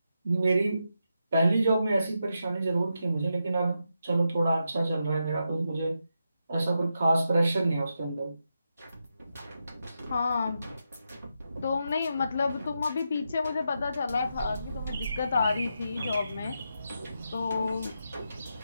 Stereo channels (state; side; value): inverted; both; correlation -0.85